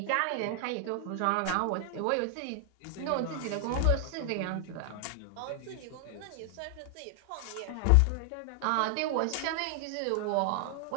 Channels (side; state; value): both; different; correlation 0.00